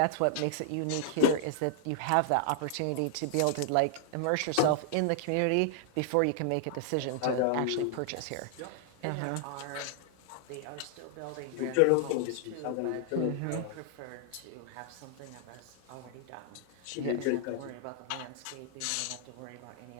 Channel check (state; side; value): different; both; correlation -0.01